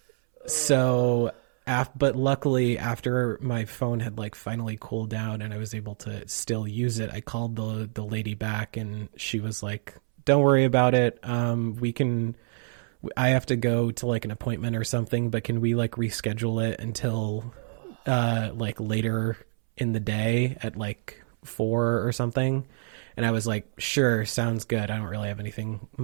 So, but luckily after my phone had like finally cooled down and I was able to still use it, I called the lady back, and she was like, don't worry about it. I have to go to like an appointment or something, but can we like reschedule it until like later in the day at like 4 or something? And I was like, sure, sounds good. I don't really have anything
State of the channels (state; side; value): silent; left; 60 dB below the other